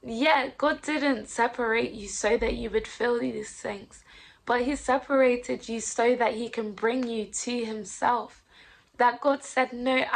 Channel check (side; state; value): both; identical; correlation 1.00